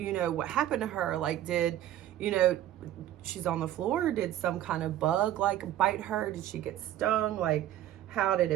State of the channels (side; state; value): left; quieter; 12.6 dB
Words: know, what happened to her. Like, you know, she's on the floor. Did some kind of bug like bite her? Did she get stung? Like, how